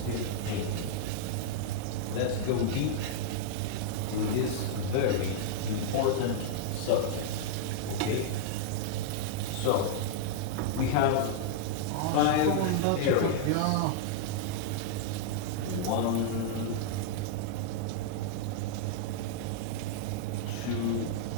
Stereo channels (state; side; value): different; both; correlation -0.02